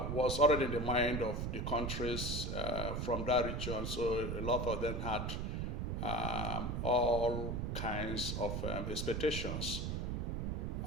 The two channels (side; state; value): right; noise; rumble, 1 dB below the sound